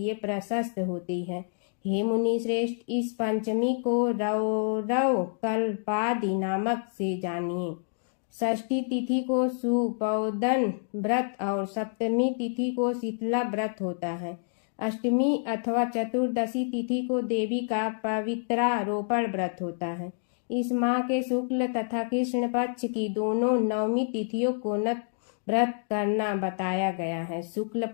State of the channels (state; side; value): silent; right; digital silence